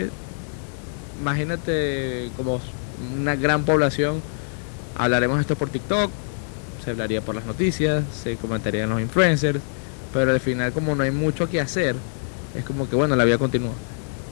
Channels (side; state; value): right; silent; digital silence